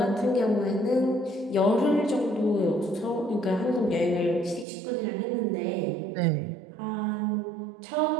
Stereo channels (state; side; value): drops out; left; at 4.7 s